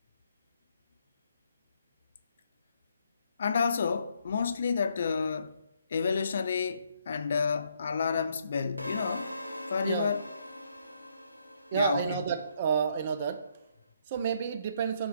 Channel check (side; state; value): both; inverted; correlation -0.72